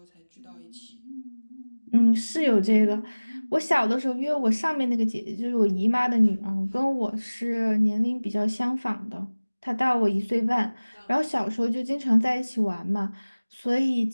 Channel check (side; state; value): both; inverted; correlation -1.00